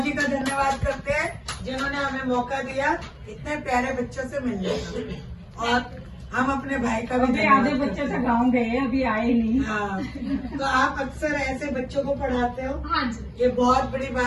का धन्यवाद करते हैं, जिन्होंने हमें मौका दिया इतने प्यारे बच्चों से मिलने का। और हम अपने भाई का भी अभी आधे बच्चे तो गाँव गए, अभी आए नहीं। हाँ, तो आप अक्सर ऐसे बच्चों को पढ़ाते हो? हाँ जी, ये बहुत बड़ी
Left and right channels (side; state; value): both; identical; correlation 1.00